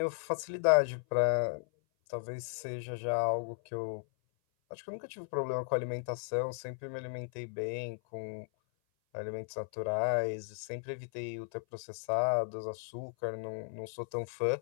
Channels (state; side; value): silent; right; 54 dB below the other